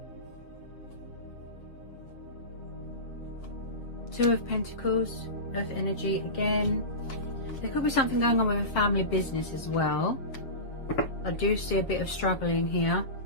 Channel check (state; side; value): late; right; 7.6 ms